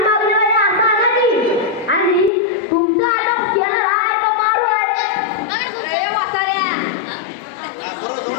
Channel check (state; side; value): drops out; right; at 2.3 s